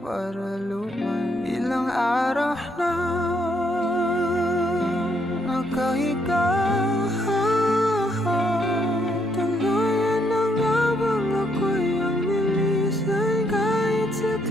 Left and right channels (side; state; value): both; normal; correlation 0.73